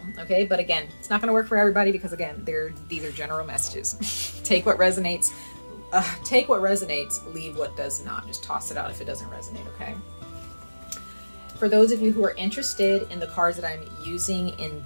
Okay, but again, it's not going to work for everybody, because again, these are general messages. Take what resonates. Take what resonates, leave what does not. Just toss it out if it doesn't resonate, okay? For those of you who are interested in the cards that I'm using in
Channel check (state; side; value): inverted; both; correlation -1.00